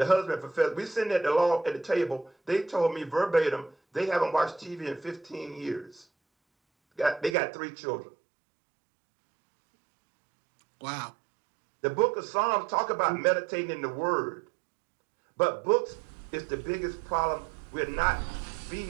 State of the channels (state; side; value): drops out; left; at 7.4 s